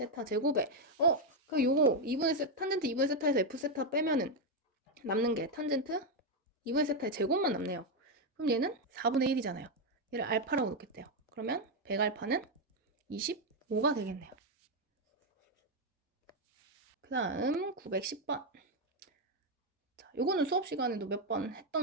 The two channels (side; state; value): both; normal; correlation 0.04